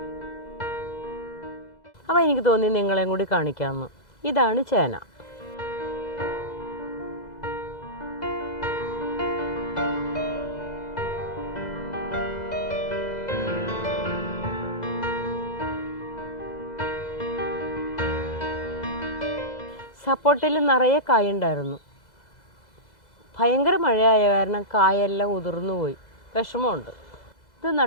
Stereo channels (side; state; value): right; late; 2.0 ms